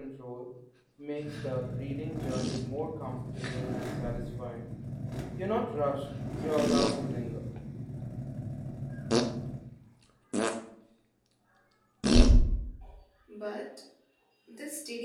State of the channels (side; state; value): both; identical; correlation 1.00